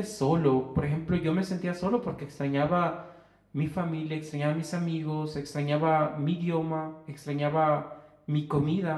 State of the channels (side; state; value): both; identical; correlation 1.00